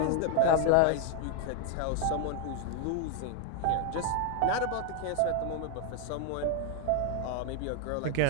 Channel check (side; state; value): both; different; correlation 0.00